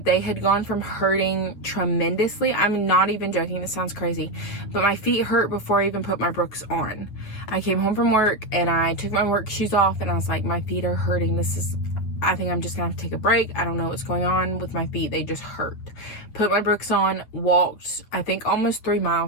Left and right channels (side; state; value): right; late; 9.4 ms